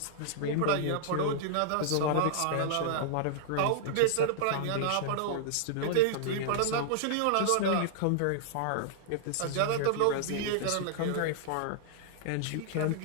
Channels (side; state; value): both; different; correlation -0.01